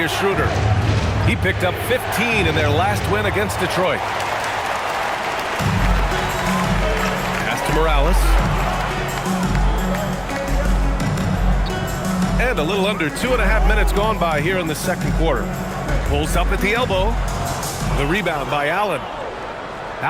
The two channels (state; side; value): identical; both; correlation 1.00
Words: Schroeder. He picked up 15 in their last win against Detroit. Pass to Morales. And a little under 2.5 minutes gone by here in the second quarter. Pulls up at the elbow. The rebound by Allen.